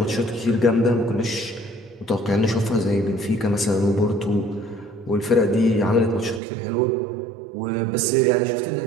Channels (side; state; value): left; drops out; at 6.4 s